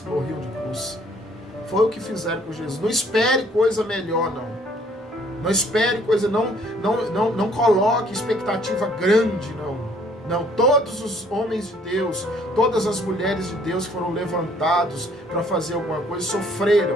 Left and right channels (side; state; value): both; normal; correlation 0.61